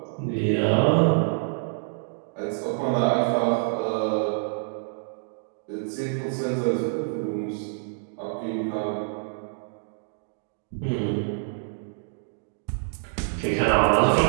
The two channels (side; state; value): left; silent; digital silence